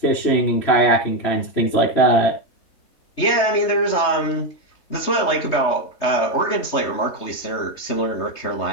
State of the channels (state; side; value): late; right; 3.3 ms